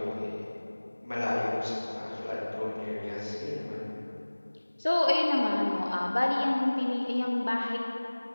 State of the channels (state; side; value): inverted; both; correlation -1.00